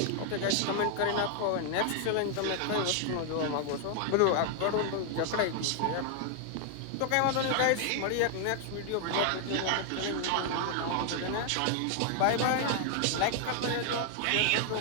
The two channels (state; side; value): different; both; correlation 0.00